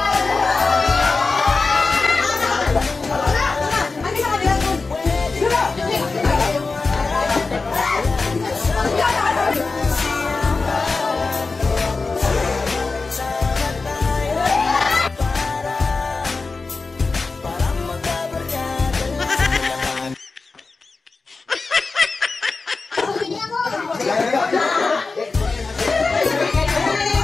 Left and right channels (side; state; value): right; quieter; 4.0 dB